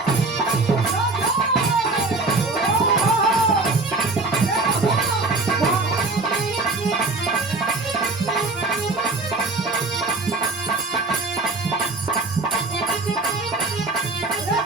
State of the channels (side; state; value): left; quieter; 3.4 dB